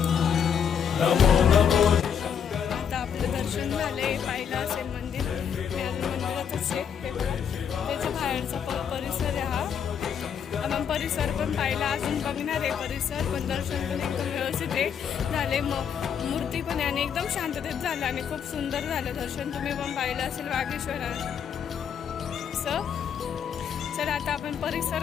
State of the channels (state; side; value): quieter; right; 7.8 dB